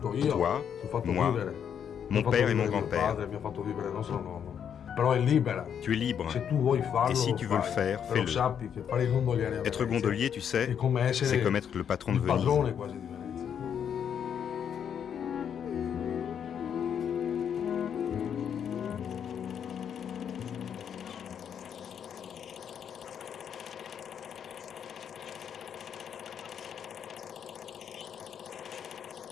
io, toi, ti ho fatto moi, vivere, ti mon ho fatto père et mon vivere mio grand-père. padre, mi ha fatto vivere il nostro nonno. Però è libera. Tu es libre. Se tu vuoi farlo, Et si lo tu veux le fai. faire, Però fais-le. sappi che fare il gondoliere a Être Venezia gondolier, tu sais, è come essere c'est comme être le patron de il Venise. padrone quasi di Venezia.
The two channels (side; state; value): right; quieter; 8.3 dB